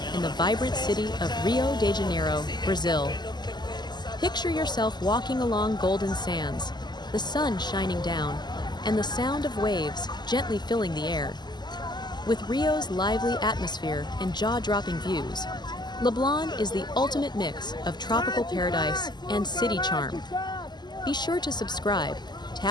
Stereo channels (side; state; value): right; late; 0.21 ms